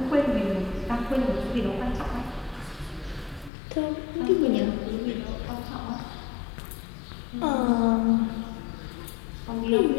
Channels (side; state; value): right; drops out; at 3.5 s